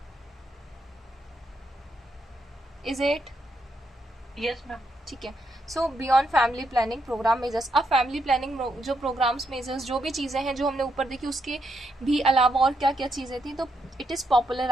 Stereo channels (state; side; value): normal; both; correlation 0.79